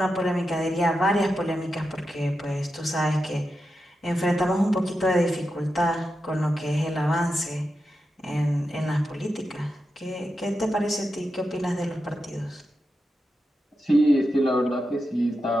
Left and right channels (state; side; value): normal; both; correlation 0.89